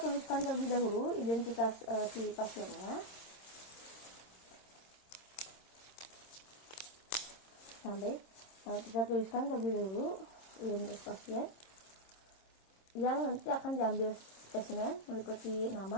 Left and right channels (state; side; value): late; right; 26 ms